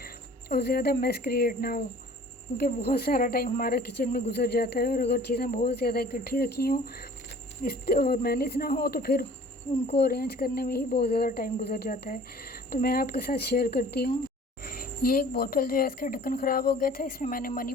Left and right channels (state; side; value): normal; both; correlation 0.49